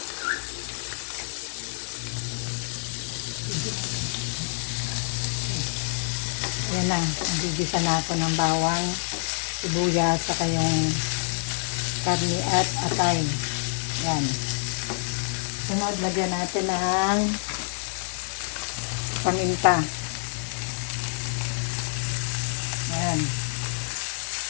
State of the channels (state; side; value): silent; right; digital silence